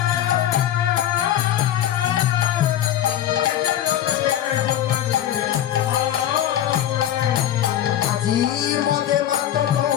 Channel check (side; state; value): right; quieter; 11.6 dB